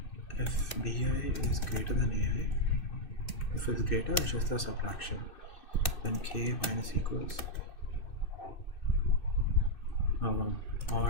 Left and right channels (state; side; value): late; right; 2.6 ms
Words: If bi is greater than ai, if it's greater, it's just a subtraction. Then k minus equals